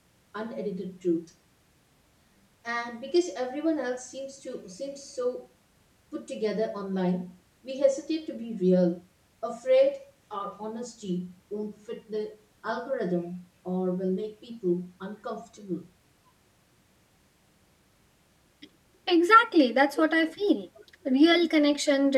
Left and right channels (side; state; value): both; identical; correlation 1.00